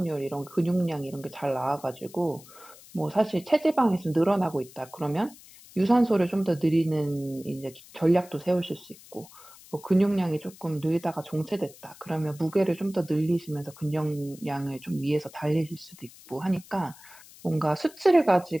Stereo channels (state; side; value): noise; left; hiss, 21 dB below the sound